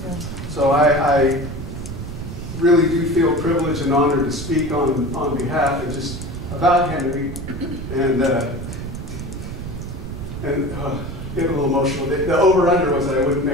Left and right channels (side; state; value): right; noise; rumble, 8 dB below the sound